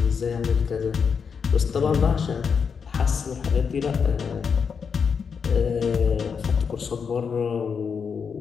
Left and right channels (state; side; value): quieter; right; 6.2 dB